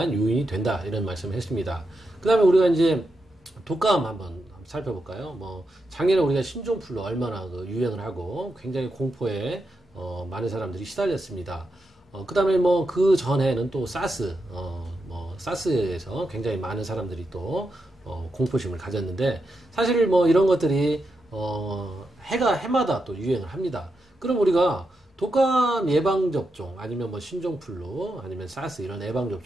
요인이 된다, 이런 말씀을 했습니다. 그 다음에 우리가 이제 독감 한번 살펴볼까요? 작년에 우리가 신종플루 얼마나 유행을 하고 굉장히 공포에 많은 사람들이 시달렸습니다. 그 다음에 그 전에는 또 사스, 사스에서 굉장히 많은 사람들이 또 공포심을 가졌는데, 사실 이런 것들이 해마다 또 유행을 합니다. 그럼 우리가 독감 예방접종, 아니면 신종플루, 아니면 사스, 이런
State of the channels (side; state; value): both; normal; correlation 0.86